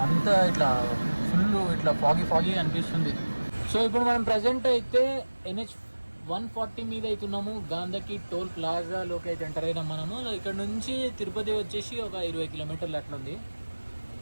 అంతా ఇట్లా ఫుల్ ఇట్లా ఫాగీ అనిపిస్తుంది. సో ఇప్పుడు మనం ప్రజెంట్ అయితే NH 140 మీద అవుతున్నాము. గాంధకి టోల్ ప్లాజాలోకి అయితే ఎంటర్ అయినాం మనము. ఇక్కడ నుంచి తిరుపతి వచ్చేసి ఒక 20 కిలోమీటర్లు అట్లా ఉంది.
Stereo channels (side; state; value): both; inverted; correlation -1.00